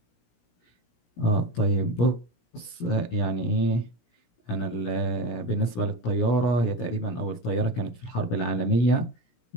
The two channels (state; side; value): late; right; 17 ms